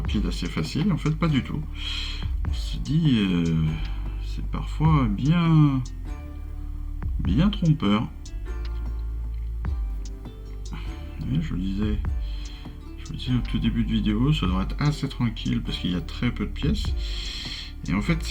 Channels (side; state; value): both; identical; correlation 1.00